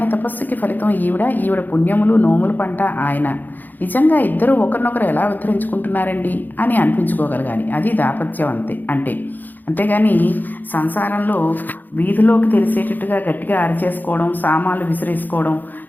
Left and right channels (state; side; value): late; right; 0.086 ms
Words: తపస్సుకి ఫలితం ఈవిడ పుణ్యములు నోములు పంట ఆయన. నిజంగా ఇద్దరు ఒకరినొకరు ఎలా ఉద్ధరించుకుంటున్నారండి అని అనిపించుకోగలగాలి. అది దాపత్యం అంతేగాని సంసారంలో వీధిలోకి తెలిసేటట్టుగా గట్టిగా అరిచేసుకోవడం, సామాన్లు విసిరేసుకోవడం,